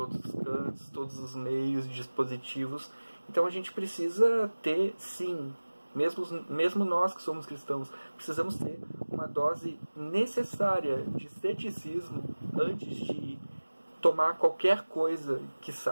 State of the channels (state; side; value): inverted; both; correlation -1.00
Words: os cantos, todos os meios, dispositivos. Então a gente precisa ter, sim, mesmo nós que somos cristãos, precisamos ter uma dose necessária de ceticismo antes de tomar qualquer coisa que